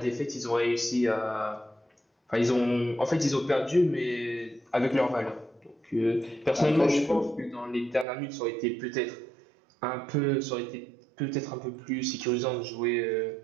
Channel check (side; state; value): left; drops out; at 8.1 s